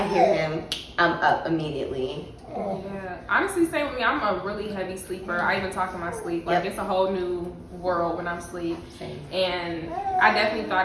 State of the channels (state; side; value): identical; both; correlation 1.00